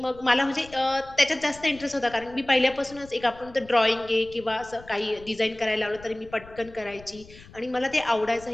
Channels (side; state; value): left; noise; rumble, 21 dB below the sound